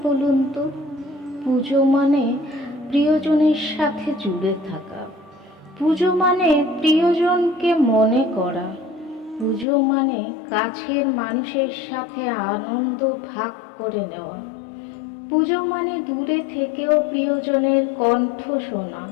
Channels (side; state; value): right; drops out; at 9.7 s